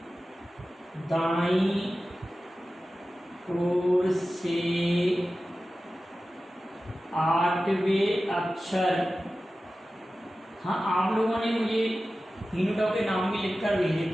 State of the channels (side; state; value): both; normal; correlation 0.95